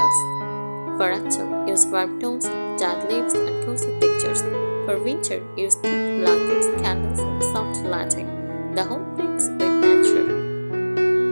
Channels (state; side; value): inverted; both; correlation -1.00